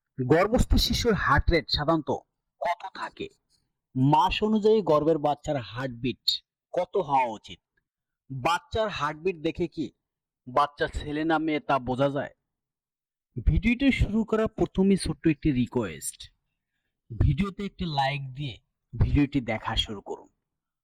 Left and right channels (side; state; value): both; identical; correlation 1.00